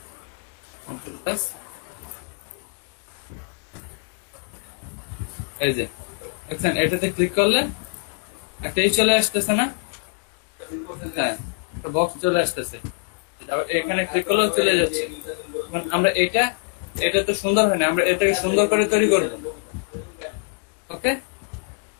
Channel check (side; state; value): right; quieter; 36.6 dB